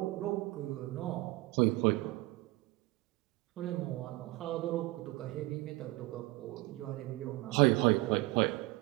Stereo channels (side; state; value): left; quieter; 20.5 dB